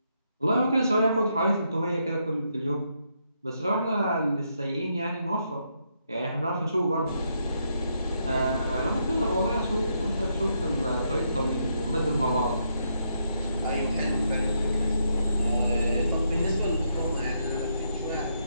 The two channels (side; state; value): both; inverted; correlation -0.78